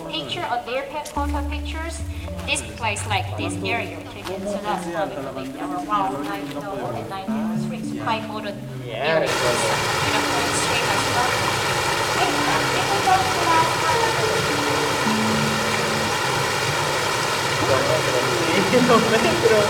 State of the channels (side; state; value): both; identical; correlation 1.00